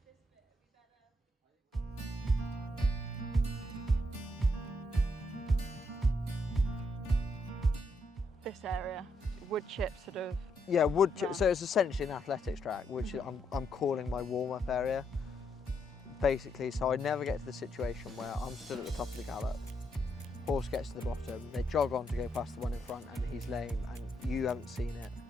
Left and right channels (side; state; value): both; normal; correlation 0.78